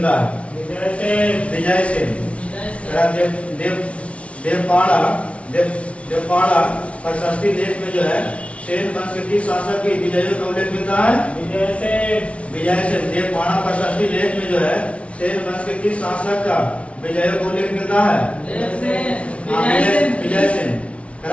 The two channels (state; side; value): late; right; 0.062 ms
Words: है? विजय सेन। देवपाड़ा प्रशस्ति लेख में जो है सेन वंश के किस शासक की विजयों का उल्लेख मिलता है? विजय सेन। देवपाड़ा प्रशस्ति लेख में जो है सेन वंश के किस शासक का विजयों का उल्लेख मिलता है? विजय सेन।